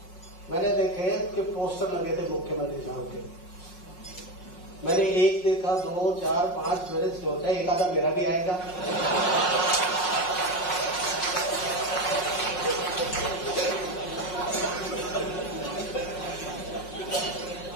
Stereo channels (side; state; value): right; late; 5.5 ms